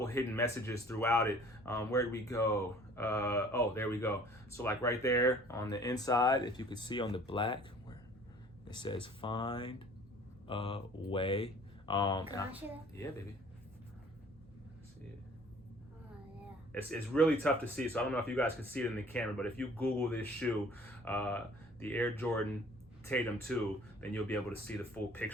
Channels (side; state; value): both; normal; correlation 0.52